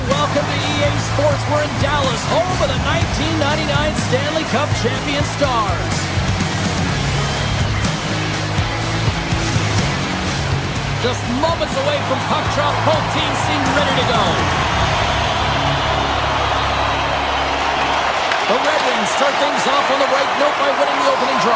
Welcome to EA Sports. We're in Dallas, home of the 1999 Stanley Cup champion Stars. Just moments away from puck drop, both teams seem ready to go. The Red Wings start things off on the right note by winning the opening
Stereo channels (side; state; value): both; identical; correlation 1.00